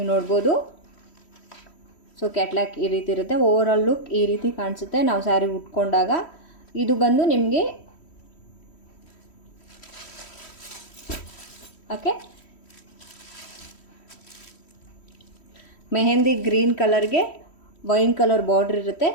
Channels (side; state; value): right; late; 3.1 ms